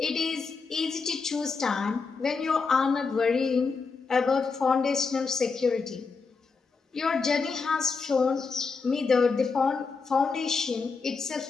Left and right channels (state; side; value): quieter; right; 4.7 dB